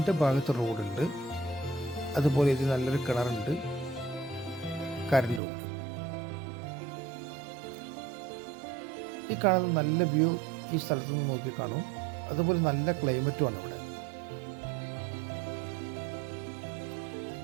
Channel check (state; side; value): drops out; left; at 5.4 s